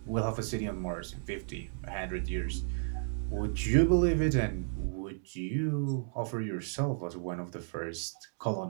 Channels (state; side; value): silent; left; digital silence